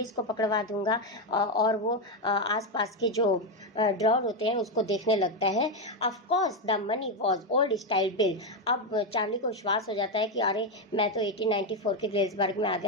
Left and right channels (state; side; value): normal; both; correlation 0.07